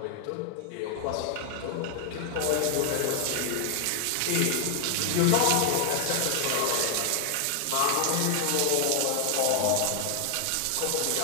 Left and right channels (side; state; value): both; different; correlation 0.00